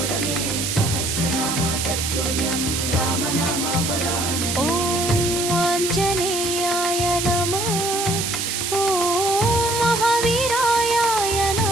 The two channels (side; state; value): right; noise; hiss, 2 dB below the sound